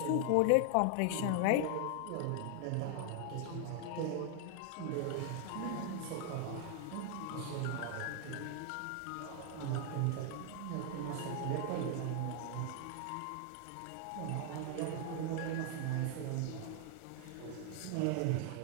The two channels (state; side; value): different; both; correlation 0.00